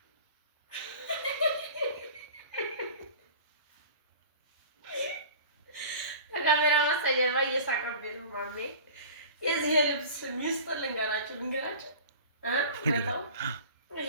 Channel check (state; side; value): inverted; both; correlation -0.40